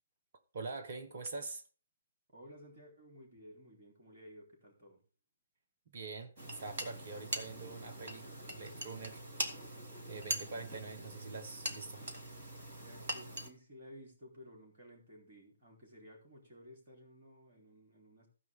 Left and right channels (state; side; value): inverted; both; correlation -0.67